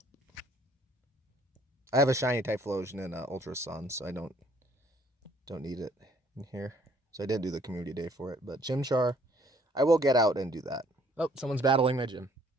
I have a shiny Typhlosion in Ultra Sun, so I don't need it in here. So I did do the community day for it, but Chimchar, I will get out and do that. Oh, someone's battling my gym.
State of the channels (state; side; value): normal; both; correlation 0.62